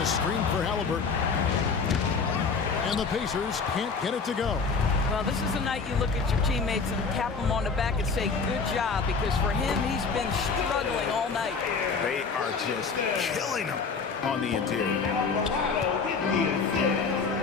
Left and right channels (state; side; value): quieter; right; 5.0 dB